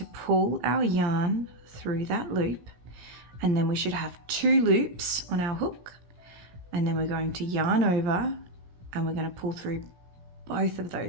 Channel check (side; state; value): left; late; 17 ms